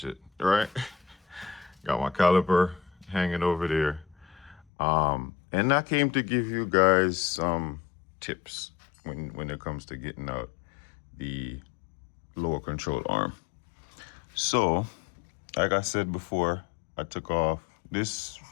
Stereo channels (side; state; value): right; drops out; at 4.7 s